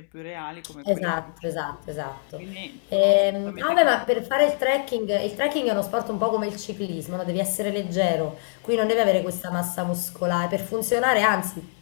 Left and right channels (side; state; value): right; silent; 62 dB below the other